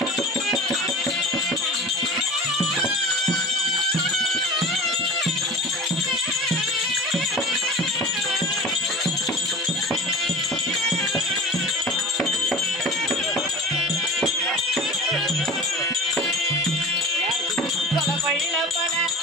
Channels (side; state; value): both; normal; correlation 0.37